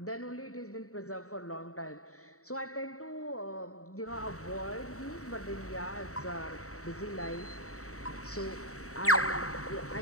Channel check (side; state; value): right; late; 0.64 ms